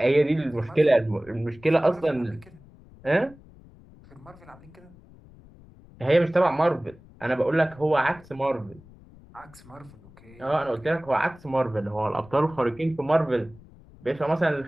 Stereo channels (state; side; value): noise; left; rumble, 23 dB below the sound